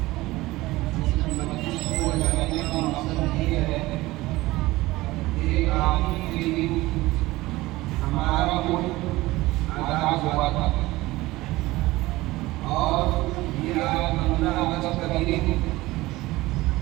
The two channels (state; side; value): quieter; left; 19.1 dB